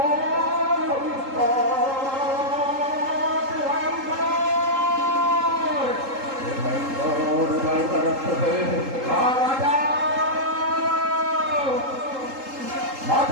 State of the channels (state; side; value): late; left; 3.8 ms